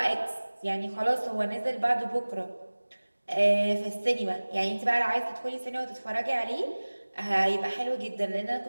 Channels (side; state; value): both; inverted; correlation -1.00